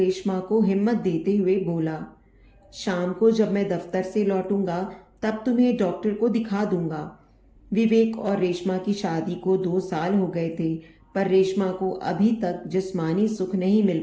को हिम्मत देते हुए बोला, शाम को जब मैं दफ्तर से लौटूंगा तब तुम्हें डॉक्टर को दिखा दूंगा। विवेक और रेशमा की शादी को 2 साल हो गए थे, पर रेशमा को अभी तक जिस्मानी सुख नहीं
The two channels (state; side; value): identical; both; correlation 1.00